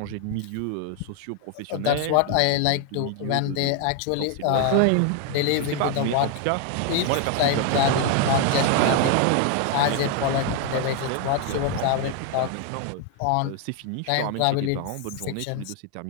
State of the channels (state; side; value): different; both; correlation 0.01